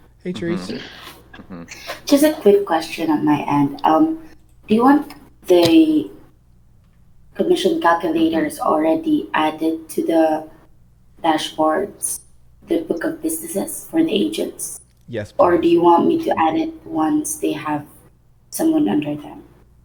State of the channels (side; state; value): both; identical; correlation 1.00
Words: Hey, Therese. Mhm. Mhm. just a quick question on my end. Do you want the commission calculators already added to the dashboards, the book of businesses for the agents? Yes, Or do please. you want me to add it once they have someone under them